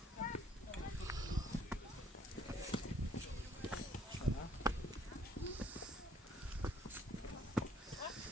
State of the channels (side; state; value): both; normal; correlation 0.62